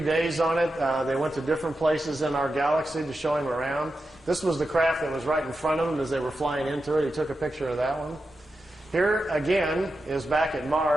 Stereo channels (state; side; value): normal; both; correlation 0.90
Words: days on it. They went to different places in our galaxy to show him around. This was the craft that was right in front of him as they were flying into it. He took a picture of that one. Here, again, is back at